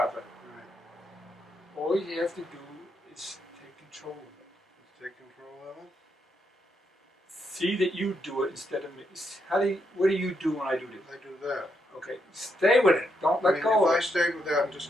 it. Right. All you have to do is take control of it. Take control of it. See that you do it instead of me. What do you do when I do this? I do that. Okay, stay with it. Don't let go of it. If I stayed with that and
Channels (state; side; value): normal; both; correlation 0.79